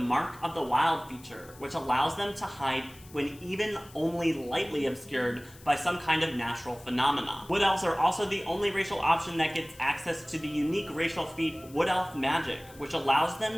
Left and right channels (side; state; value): left; noise; hiss, 22 dB below the sound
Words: of the Wild feature, which allows them to hide when even only lightly obscured by some kind of natural phenomena. Wood Elves are also the only racial option that gets access to the unique racial feat Wood Elf Magic, which allows